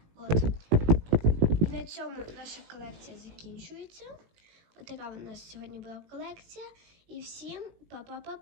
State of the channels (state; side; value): late; left; 18 ms